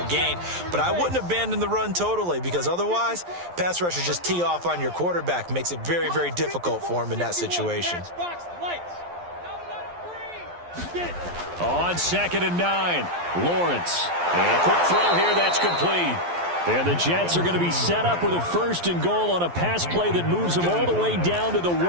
gain. But I wouldn't abandon the run totally, because otherwise, pass rushers just tee off on your quarterback. Makes it very, very difficult for him in that situation. On 2nd and 9, Lawrence. And a quick throw here, that's complete. And the Jets are going to be set up with a 1st and goal on a pass play that moves them all the way down to the 1.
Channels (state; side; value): late; left; 11 ms